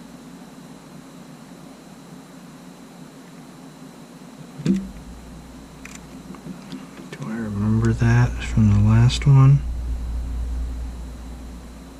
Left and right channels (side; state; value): both; identical; correlation 1.00